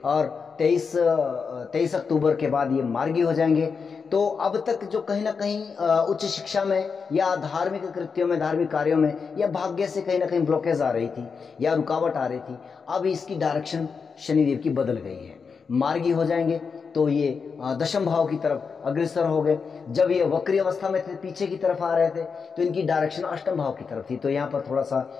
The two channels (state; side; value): quieter; right; 5.5 dB